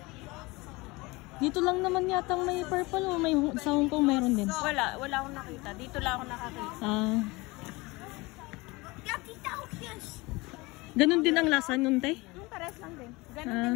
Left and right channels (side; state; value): right; quieter; 23.4 dB